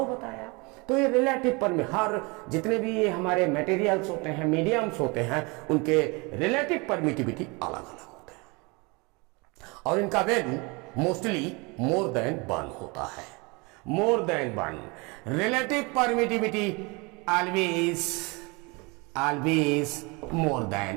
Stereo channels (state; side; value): quieter; left; 27.9 dB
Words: बताया। तो ये रिलेटिव हर जितने भी ये हमारे मटेरियल्स होते हैं, मीडियम्स होते हैं, उनके रिलेटिव परमिटिविटी अलग अलग होते हैं और इनका वैल्यू मोस्टली मोर देन 1 होता है। More than 1 relative permittivity always more